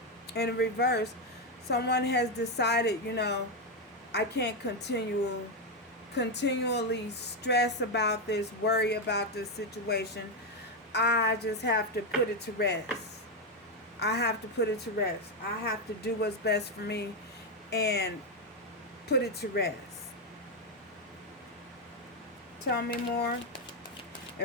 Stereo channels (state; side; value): normal; both; correlation 0.05